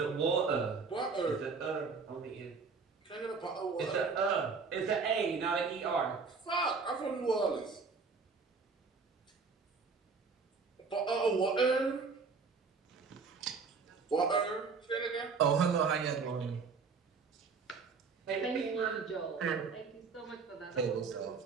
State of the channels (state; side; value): quieter; left; 4.9 dB